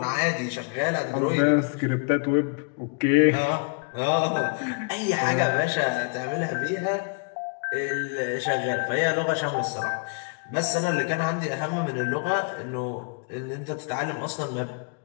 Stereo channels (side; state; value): right; quieter; 36.9 dB